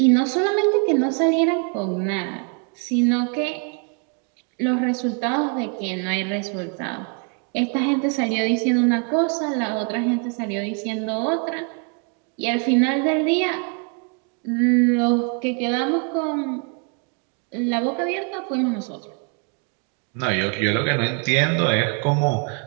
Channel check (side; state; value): left; quieter; 39.6 dB